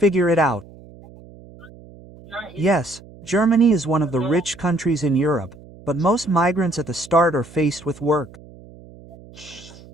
it out. Yes, Germany is one of the rich countries in Europe, but most migrants at the start are faced with work,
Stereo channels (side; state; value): right; noise; hum, 21 dB below the sound